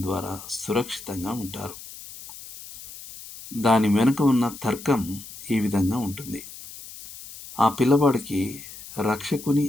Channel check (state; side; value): noise; left; hiss, 15 dB below the sound